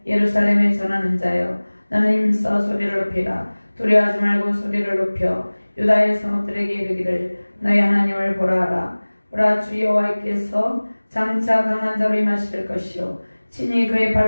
예루살렘에 전하는 자여 너는 힘써 소리를 높이라. 두려워하지 말고 소리를 높여 유다의 성읍들에게 이르기를 너희 하나님을 보라 하라. 보라 주 여호와께서 장차 강한 자로 임하실 것이요 친히 그의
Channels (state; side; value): inverted; both; correlation -1.00